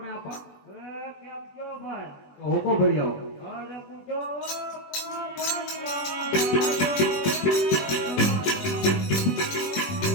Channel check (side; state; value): right; late; 20 ms